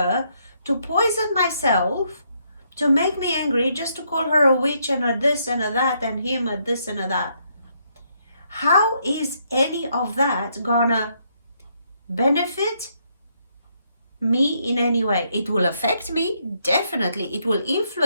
to poison myself, to make me angry, just to call her a witch and a this and a that, and him a this and a that. How is any of that gonna benefit me in any way. It will affect me, definitely. It will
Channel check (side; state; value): both; inverted; correlation -0.74